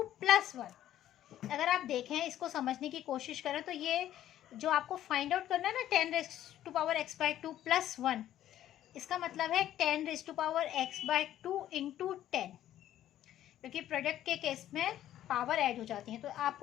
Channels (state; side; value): quieter; right; 12.3 dB